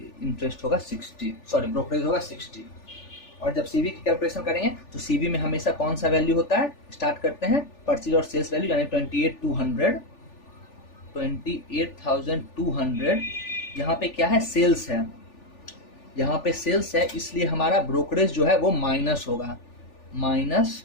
होगा 60, ब्रोकरेज होगा 60। और जब सीवी की कैलकुलेशन करेंगे तो सीवी में हमेशा कौन सा वैल्यू होता है, स्टार्ट करते हैं परचेज और सेल्स वैल्यू, यानी 28,200। यहाँ पे क्या है, सेल्स है, यहाँ पे सेल्स है, इसलिए हमारा ब्रोकरेज जो है वो माइनस होगा,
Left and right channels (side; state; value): right; late; 3.4 ms